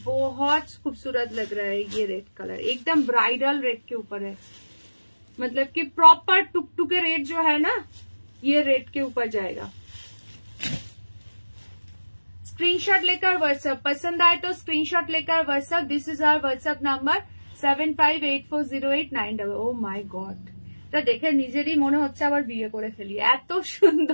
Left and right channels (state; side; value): inverted; both; correlation -1.00